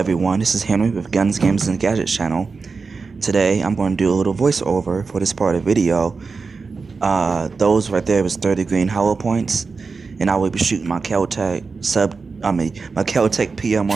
this is Henry with Guns, Games, and Gadgets channel. Today I'm going to do a little voiceover for this part of the video. Those right there was 30 green hollow points, and I will be shooting my Kel-Tec my Kel-Tec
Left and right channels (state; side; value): quieter; left; 4.6 dB